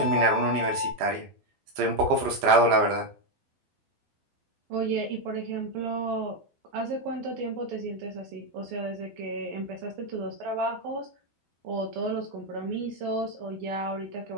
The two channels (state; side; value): late; left; 12 ms